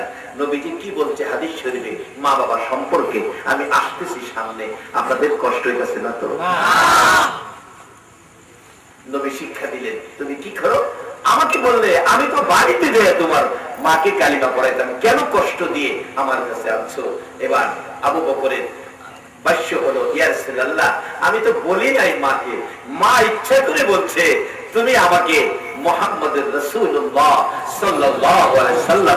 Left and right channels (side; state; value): both; identical; correlation 1.00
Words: নবীজি কি বলছে হাদিস শরীফে মা বাবা সম্পর্কে? আমি আসতেছি সামনে, আপনাদের কষ্ট হইতেছে না তো? নবী শিক্ষা দিলেন, তুমি কি করো? আমাকে বললে আমি তো বাড়িতে যাই তোমার মাকে কালিমা পড়াইতাম, কেন কষ্ট দিয়ে আমার কাছে আনছো? এবার আবু বকরের ভাষ্য হলো, ইয়া রাসূলুল্লাহ আমি তো বলি নাই মাকে, মা ইচ্ছা করে বলছে তুমি আমাকে মুহাম্মদুর রাসূলুল্লাহ সাল্লাল্লাহু আলাইহি